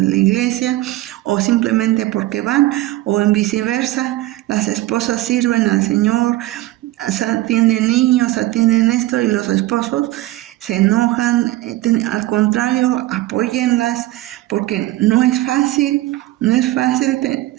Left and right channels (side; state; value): left; quieter; 16.8 dB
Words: iglesia, o simplemente porque van, o en viceversa, las esposas sirven al Señor, atienden niños, atienden esto, y los esposos se enojan. Al contrario, apóyenlas, porque no es fácil